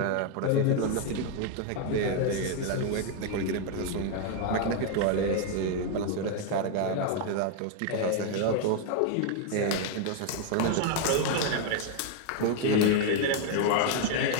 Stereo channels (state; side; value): different; both; correlation 0.00